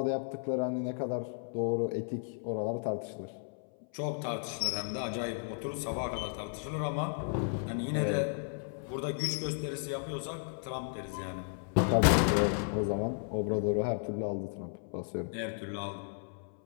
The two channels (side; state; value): right; silent; 55 dB below the other